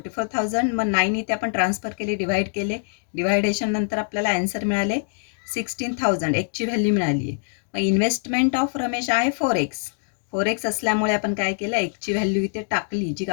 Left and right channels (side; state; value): right; silent; digital silence